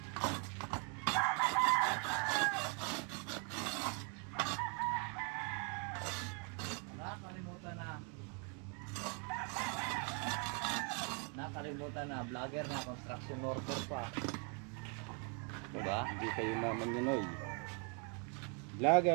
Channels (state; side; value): quieter; left; 37.5 dB